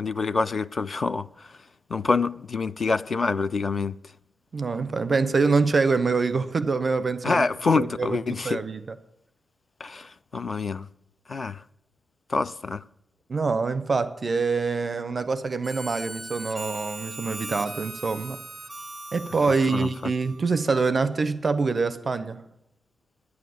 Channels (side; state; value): both; normal; correlation 0.87